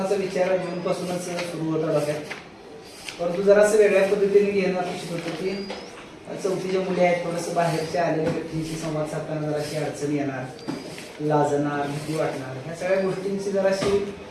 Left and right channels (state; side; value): identical; both; correlation 1.00